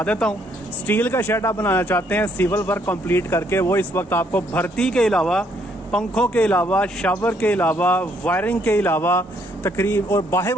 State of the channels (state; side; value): normal; both; correlation 0.69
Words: देता हूँ। स्टील का शेड आप बनाना चाहते हैं सिविल वर्क कंप्लीट करके, वो इस वक्त आपको भर्ती के अलावा, पंखों के अलावा, शावर के अलावा, वायरिंग के अलावा तकरीब और बाहर